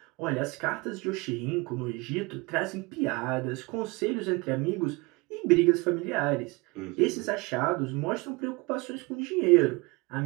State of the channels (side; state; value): left; quieter; 25.6 dB